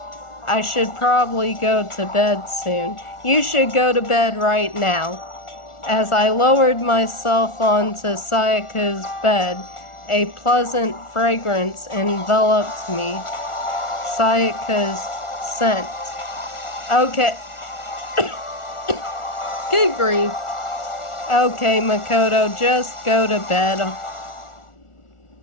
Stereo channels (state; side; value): late; right; 1.4 ms